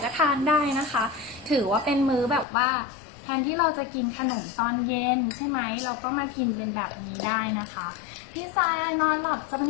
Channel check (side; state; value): right; drops out; at 2.5 s